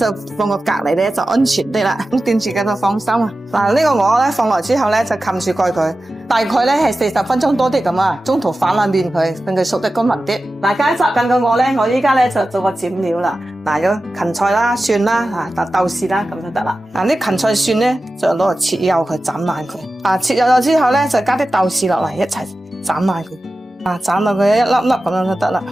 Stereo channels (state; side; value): normal; both; correlation 0.94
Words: 放個隔籬咧就安全啲啦。咁掂住嘅就放心啊。呢個鵝咧放落之後咧就冚住蓋佢，大概咧係40分鐘多啲咁啊。中途反下面佢，令佢熟得均勻啲。嗱，加雜緊個鵝咧，我依家咧就做個剪料啦。有芹菜啦、蒜啦、豆豉啦，咁就得啦。啲芹菜蒜咧就攞嚟切幼佢，斬爛佢。切幼咗之後咧就加啲豆豉落嚟一齊斬爛佢。斬到佢一粒粒咁樣就得啦。